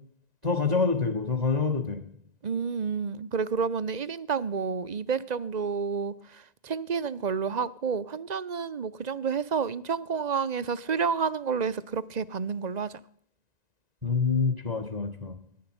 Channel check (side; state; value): left; late; 1.9 ms